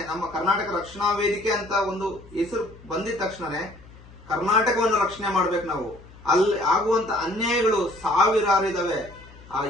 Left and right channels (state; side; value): noise; left; hum, 21 dB below the sound